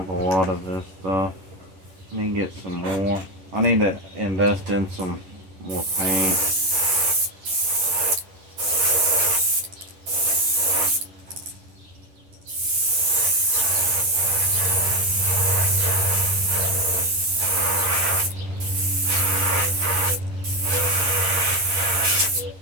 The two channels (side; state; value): left; late; 11 ms